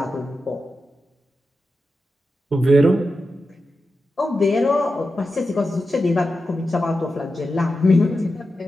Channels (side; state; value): both; normal; correlation 0.91